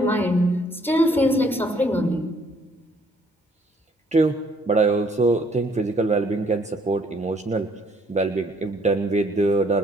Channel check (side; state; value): both; normal; correlation 0.64